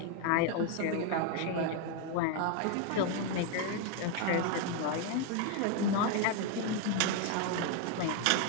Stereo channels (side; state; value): both; different; correlation 0.01